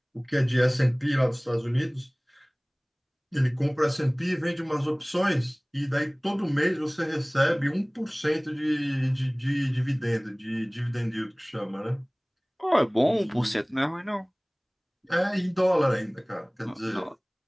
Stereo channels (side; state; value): both; identical; correlation 1.00